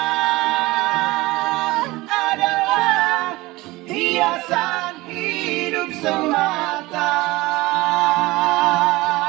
adalah hiasan hidup semata.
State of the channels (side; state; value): left; quieter; 20.4 dB